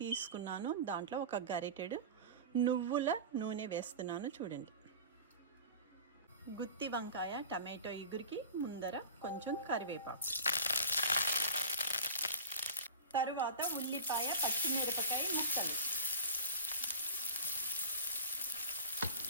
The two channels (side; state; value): both; inverted; correlation -0.35